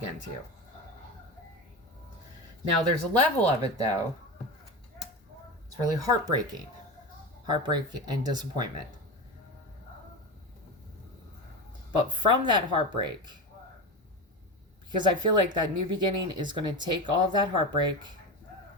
to you. Now, there's a level of it, though. It's really heartbreaking. Heartbreak and disappointment. But from that heartbreak, because I feel like that new beginning is going to take all of that heartbreak,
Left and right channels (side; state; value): both; normal; correlation 0.22